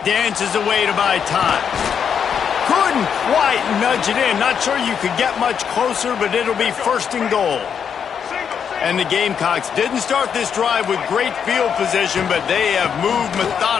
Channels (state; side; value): quieter; right; 7.4 dB